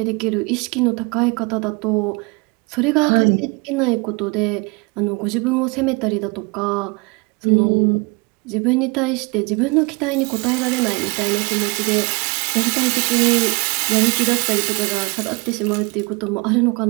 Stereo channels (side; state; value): left; quieter; 28.4 dB